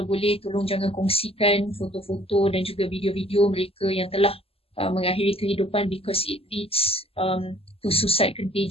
boleh tolong jangan kongsikan foto-foto dan juga video-video mereka yang telah mengakhiri kehidupan, because it leads to suicide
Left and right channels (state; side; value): late; right; 0.28 ms